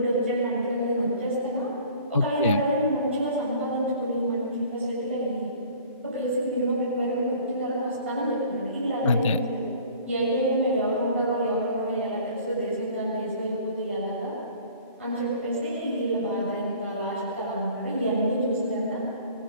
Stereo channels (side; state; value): both; inverted; correlation -0.49